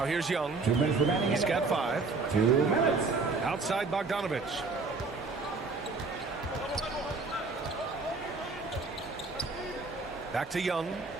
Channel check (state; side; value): quieter; left; 4.0 dB